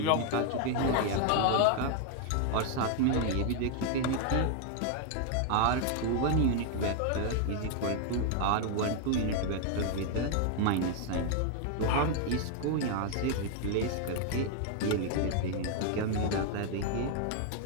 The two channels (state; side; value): different; both; correlation 0.00